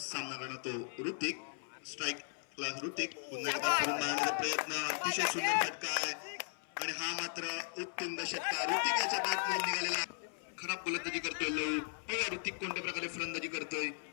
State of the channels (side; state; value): right; silent; 53 dB below the other